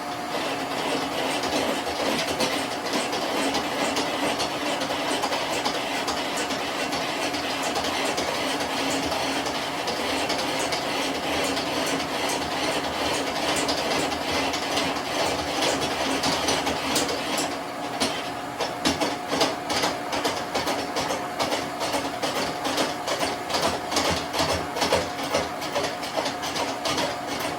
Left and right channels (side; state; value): both; identical; correlation 1.00